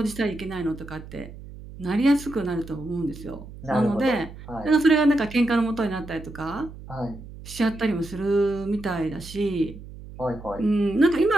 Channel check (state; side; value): noise; right; hum, 15 dB below the sound